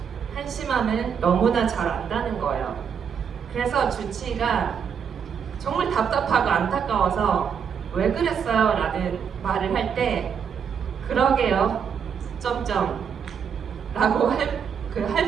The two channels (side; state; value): left; quieter; 7.2 dB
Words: 한심함을 너무나 잘 안다는 거예요. 그래서 주치의가 정말 답답하고 안타까워서 왜 그랬어요? 라는 말을 할 때 그러게요. 점점 라고 할